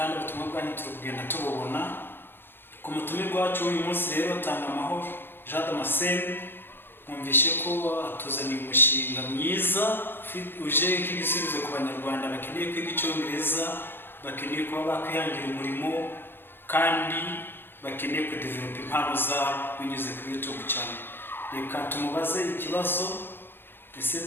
ubutumwa bwanyu turi kugenda tububona. Ku mutumirwa wacu uyu munsi rero TANGAJ, mwumvishe ko atuzaniye umushinga mwiza uje nk'igisubizo ku banyarwanda bakeneye kwiga Icyongereza, bakeneye kuba bakwihangira umurimo kandi bakeneye kudevelop impano zabo binyuze kuri YouTube channel. Reka tumubaze ikibazo,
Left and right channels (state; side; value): late; right; 0.10 ms